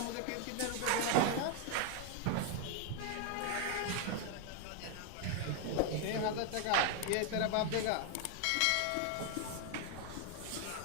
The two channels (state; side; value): different; both; correlation 0.00